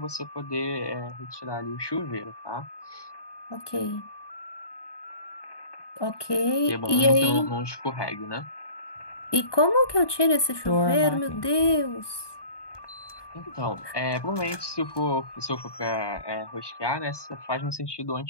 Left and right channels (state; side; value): late; right; 1.2 ms